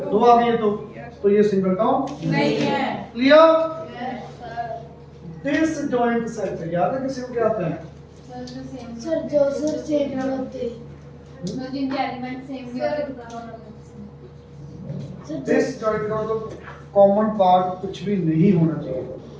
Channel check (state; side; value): identical; both; correlation 1.00